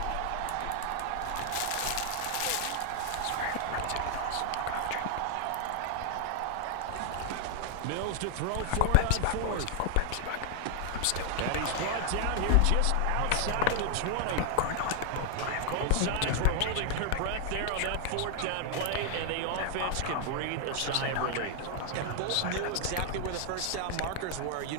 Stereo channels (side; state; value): both; different; correlation 0.00